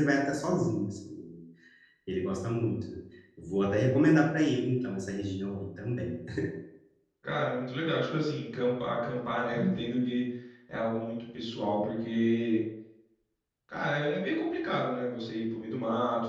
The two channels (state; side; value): identical; both; correlation 1.00